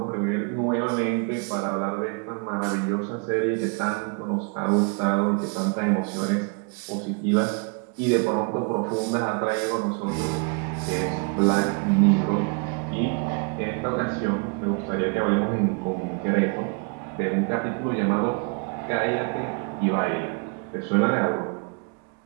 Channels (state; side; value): quieter; left; 35.5 dB